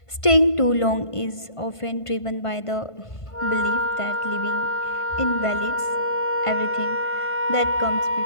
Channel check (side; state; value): right; late; 1.5 ms